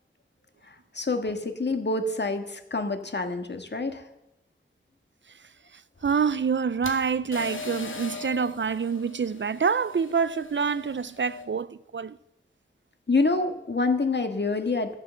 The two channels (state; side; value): normal; both; correlation 0.18